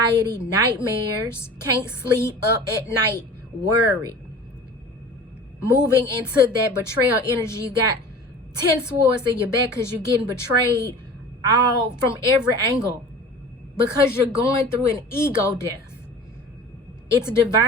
nightmares, can't sleep, up at night, worried. Moving into that betrayal energy, you got 10 swords in your back because you're getting betrayed all from every angle, because you're going through an ego death. It's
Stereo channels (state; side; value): normal; both; correlation 0.39